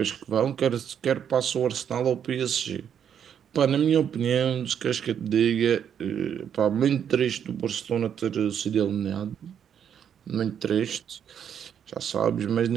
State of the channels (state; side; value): quieter; left; 8.5 dB